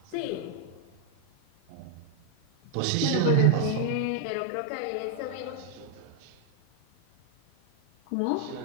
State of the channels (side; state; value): both; different; correlation 0.00